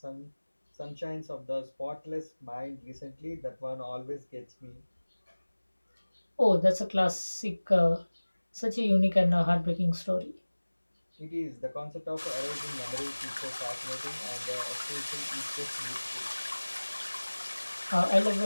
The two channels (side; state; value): both; inverted; correlation -1.00